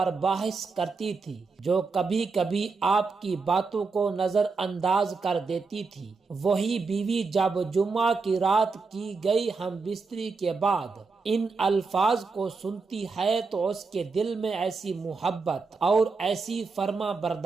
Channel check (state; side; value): quieter; left; 4.4 dB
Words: بحث کرتی تھی، جو کبھی کبھی آپ کی باتوں کو نظر انداز کر دیتی تھی، وہی بیوی جب جمعہ کی رات کی گئی ہم بستری کے بعد ان الفاظ کو سنتی ہے تو اس کے دل میں ایسی محبت اور ایسی فرما